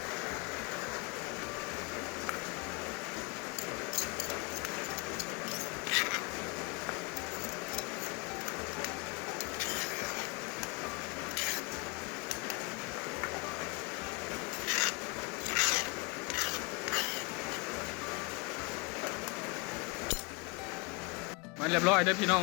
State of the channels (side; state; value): right; quieter; 28.5 dB